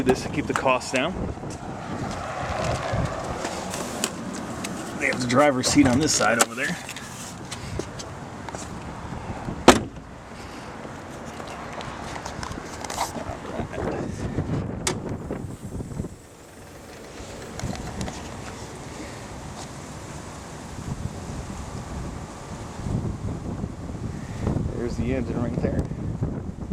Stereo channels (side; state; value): both; identical; correlation 1.00